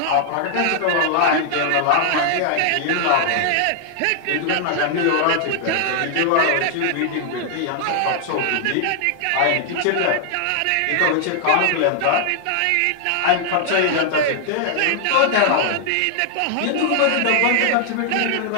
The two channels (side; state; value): both; different; correlation 0.00